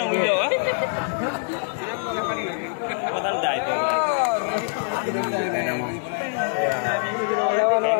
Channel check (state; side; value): silent; right; digital silence